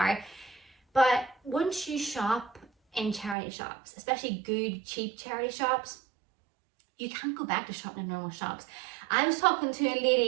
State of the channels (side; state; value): left; drops out; at 3.4 s